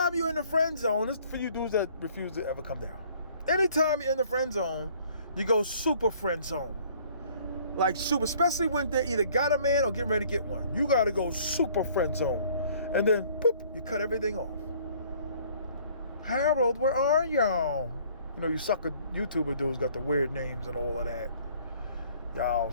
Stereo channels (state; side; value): inverted; both; correlation -0.57